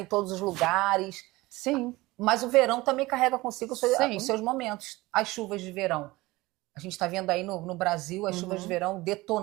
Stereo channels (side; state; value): left; quieter; 20.3 dB